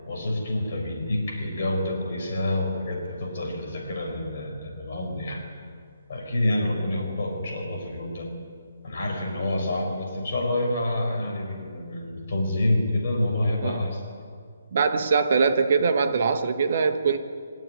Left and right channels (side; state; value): both; inverted; correlation -0.79